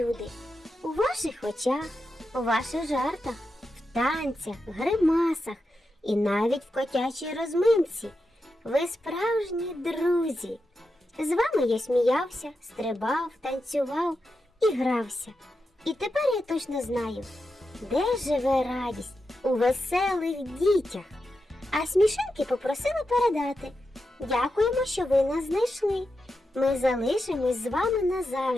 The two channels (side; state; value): both; normal; correlation 0.88